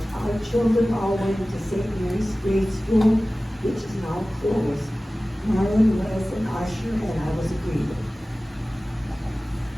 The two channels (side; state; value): both; normal; correlation 0.97